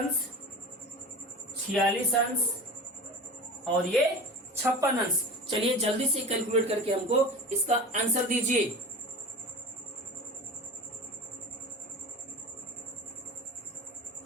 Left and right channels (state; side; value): normal; both; correlation 0.33